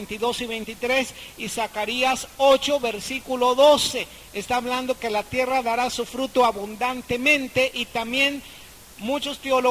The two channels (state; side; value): identical; both; correlation 1.00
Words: y 23, y Zacarías 8, versículo 12. Está hablando que la tierra dará su fruto abundantemente, y también muchos